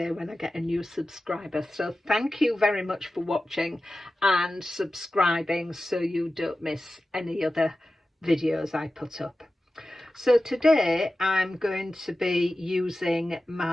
when I get a new subscriber, so thank you very much for watching and subscribing so you don't miss any other videos I put up. So today I'm going to be using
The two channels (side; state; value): both; normal; correlation 0.94